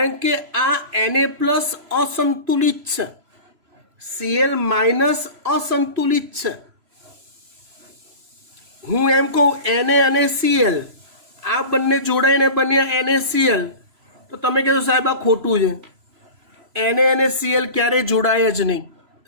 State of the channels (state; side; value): late; left; 3.0 ms